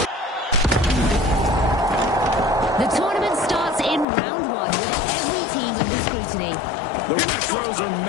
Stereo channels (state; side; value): drops out; right; at 4.0 s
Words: The tournament starts in round one with every team under scrutiny. The retros are